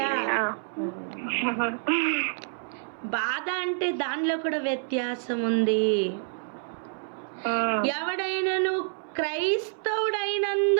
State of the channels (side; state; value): left; silent; 60 dB below the other